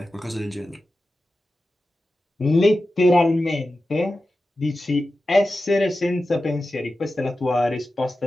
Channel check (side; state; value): both; normal; correlation 0.93